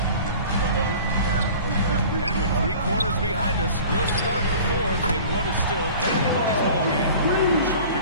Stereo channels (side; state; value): both; inverted; correlation -0.43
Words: And with 3 quarters behind us, we'll start the 4th in what is still anybody's ballgame. Sharp and